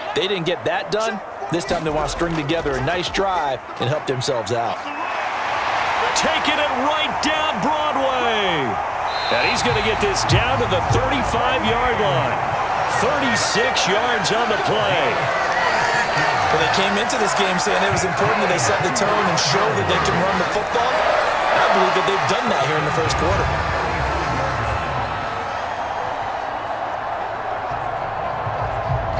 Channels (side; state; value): both; identical; correlation 1.00